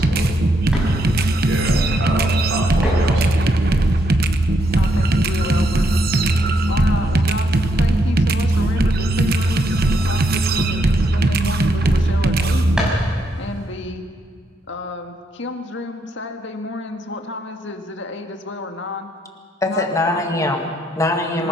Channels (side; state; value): both; normal; correlation 0.77